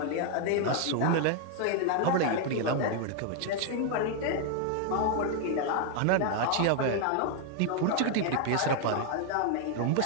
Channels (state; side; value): different; both; correlation 0.00